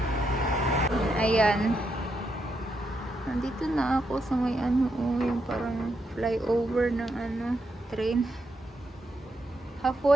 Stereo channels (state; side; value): normal; both; correlation 0.81